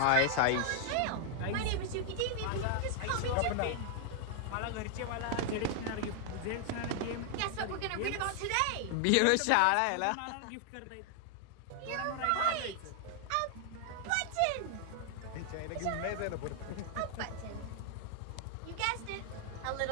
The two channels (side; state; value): both; different; correlation 0.00